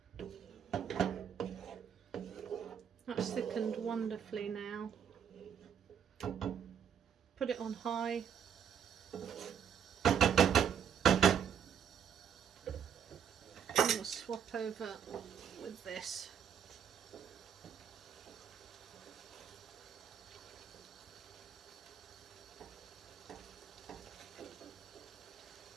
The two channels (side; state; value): left; quieter; 8.2 dB